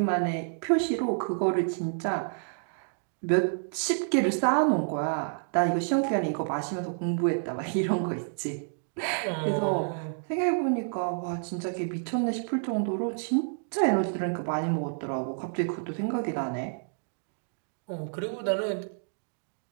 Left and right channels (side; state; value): left; silent; digital silence